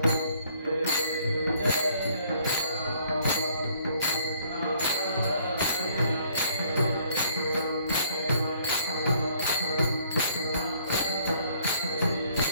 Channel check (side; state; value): both; inverted; correlation -0.62